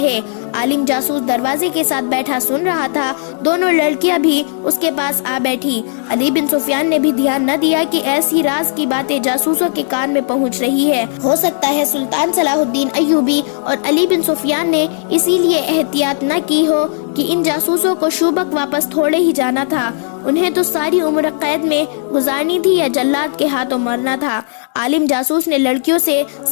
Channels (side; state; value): right; silent; digital silence